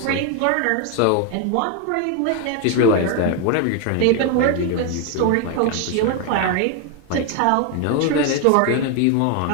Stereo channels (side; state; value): both; different; correlation 0.01